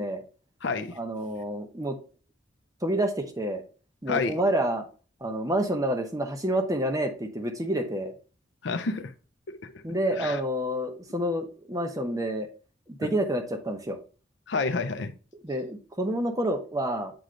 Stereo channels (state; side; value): normal; both; correlation 0.47